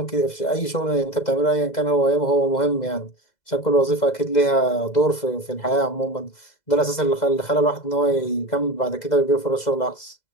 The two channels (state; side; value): late; right; 2.0 ms